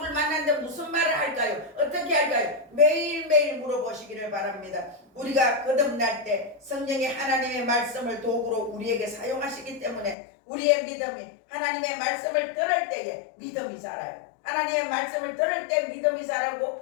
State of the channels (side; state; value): right; drops out; at 10.2 s